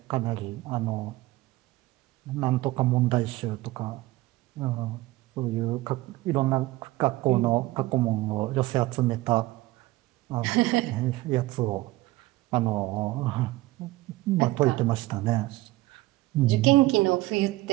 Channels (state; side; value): quieter; left; 18.5 dB